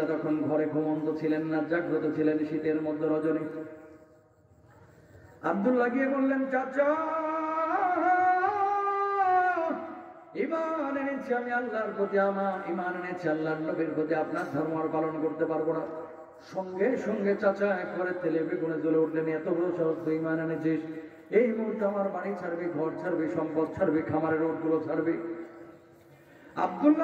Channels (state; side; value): identical; both; correlation 1.00